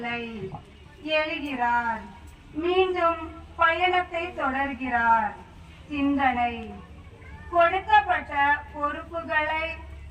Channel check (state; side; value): identical; both; correlation 1.00